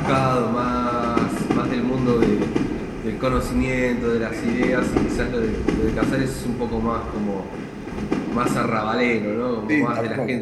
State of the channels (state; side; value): identical; both; correlation 1.00